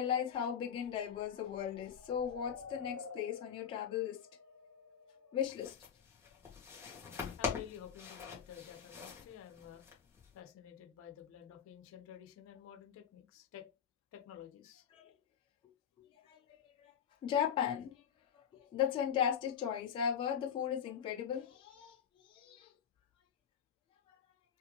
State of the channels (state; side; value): quieter; right; 8.3 dB